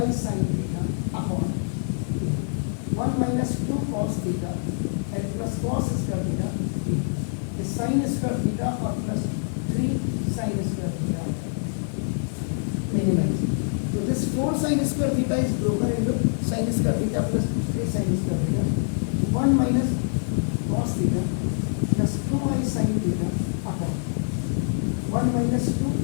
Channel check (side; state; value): right; silent; 62 dB below the other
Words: sin theta upon 1 minus 2 cos theta and plus cos square theta इस sin स्क्वायर थीटा और plus 3 sin square theta minimize. तो this 4 sin square theta is broken into sin square theta plus 3 sin square theta, 1 minus cos theta plus 2i sin theta upon 1 minus 2